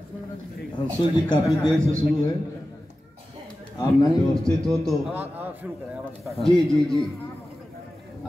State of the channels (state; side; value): normal; both; correlation 0.94